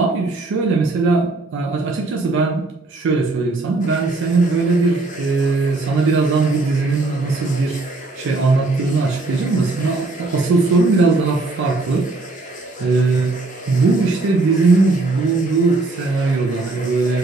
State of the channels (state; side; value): quieter; left; 3.3 dB